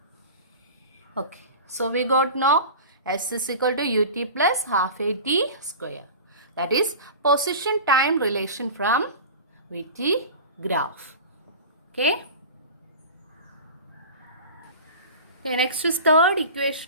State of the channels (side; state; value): both; inverted; correlation -0.35